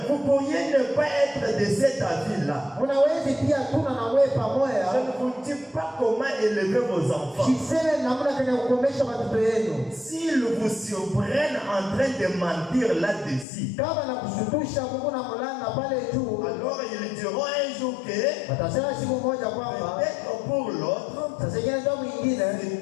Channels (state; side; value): drops out; right; at 13.5 s